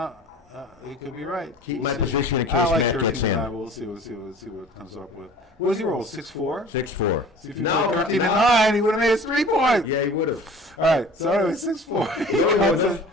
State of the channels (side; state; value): both; normal; correlation 0.44